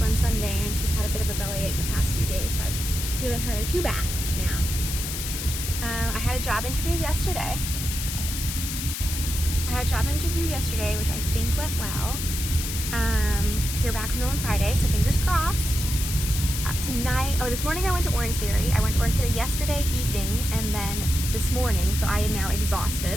on Sunday, and she's had a bit of a bellyache the past few days, so I've given her 2 baths now. I had a job interview yesterday. Which I think went well. Hear back from them on Friday, so fingers crossed. This morning I went to Orange Theory. I went to Orange Theory yesterday evening and then this morning, so I am now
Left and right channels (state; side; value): noise; left; hiss, 5 dB below the sound